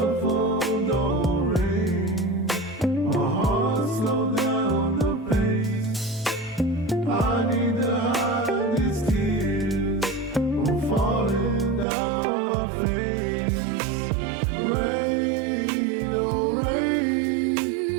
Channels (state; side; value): drops out; left; at 11.9 s